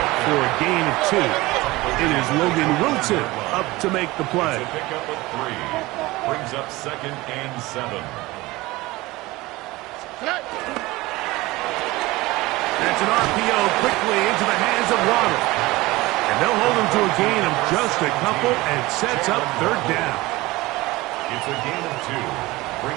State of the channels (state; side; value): quieter; left; 20.3 dB